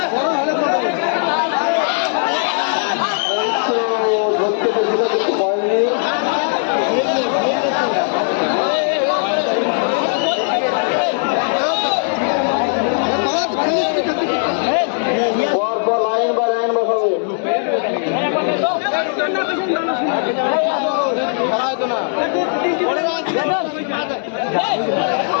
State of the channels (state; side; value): silent; right; digital silence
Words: ধরতে পেরেছিল কিন্তু হয়নি। পরপর লাইন বা লাইন বসাবে।